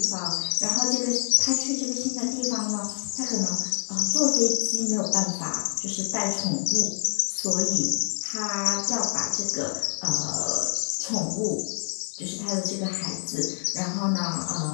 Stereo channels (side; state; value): right; silent; 61 dB below the other